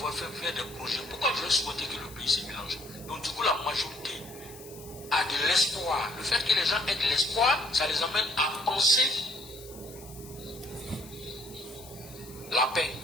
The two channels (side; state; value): left; noise; hiss, 18 dB below the sound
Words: fait des projets, pourquoi je vais souhaiter que le pays se mélange? Donc du coup la majorité a de l'espoir. Le fait que les gens aient de l'espoir, ça les amène à penser la paix,